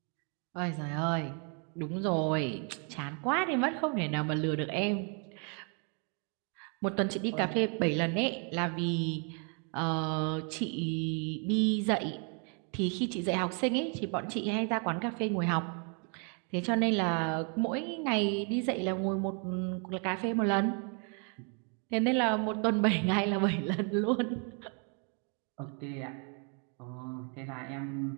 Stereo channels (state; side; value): quieter; left; 38.5 dB